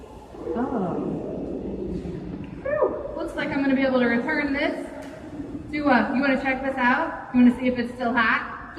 Oh. Whew. Looks like I'm going to be able to return this. You want to check this out? You want to see if it's still hot?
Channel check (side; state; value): both; identical; correlation 1.00